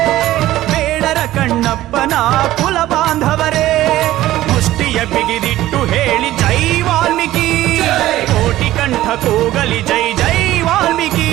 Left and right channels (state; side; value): quieter; left; 15.1 dB